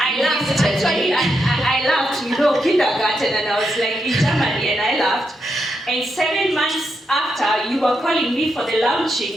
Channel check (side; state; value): both; normal; correlation 0.83